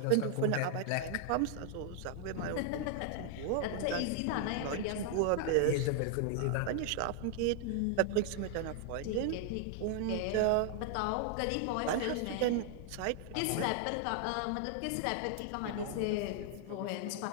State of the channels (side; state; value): both; different; correlation 0.00